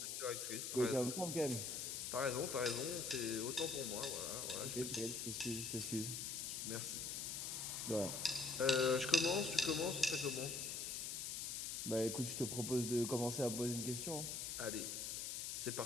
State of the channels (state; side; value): noise; left; hiss, 3 dB below the sound